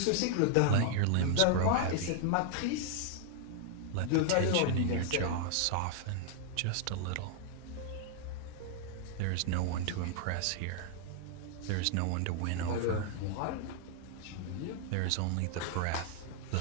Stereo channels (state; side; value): different; both; correlation 0.00